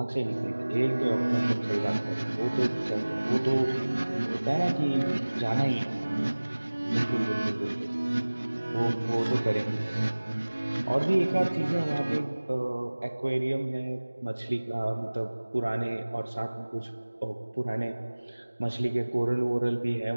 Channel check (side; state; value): both; inverted; correlation -1.00